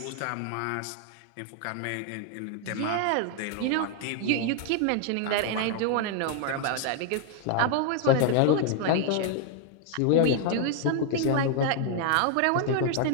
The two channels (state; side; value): different; both; correlation 0.00